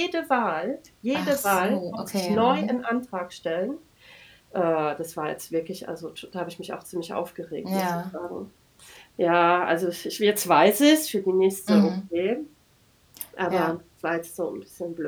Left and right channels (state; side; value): identical; both; correlation 1.00